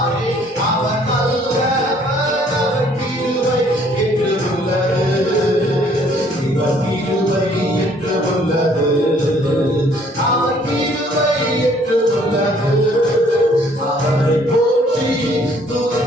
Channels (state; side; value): normal; both; correlation 0.61